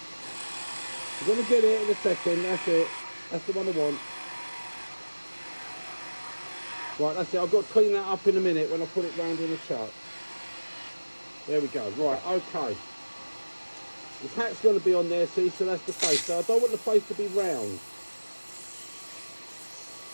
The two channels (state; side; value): inverted; both; correlation -1.00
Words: You're going to get it in a second, that's it. That's the one I want. Right, that's it. I've got to clean that up in a minute when I put it round in the chuck. There we go. Right, okay. His hat's going to be on there, see, so that's the face. So I don't want the face to be round.